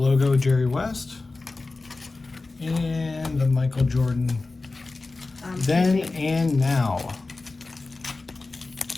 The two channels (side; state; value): right; quieter; 3.5 dB